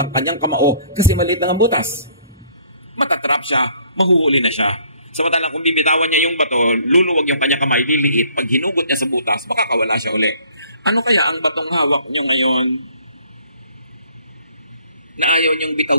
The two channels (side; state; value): both; inverted; correlation -0.59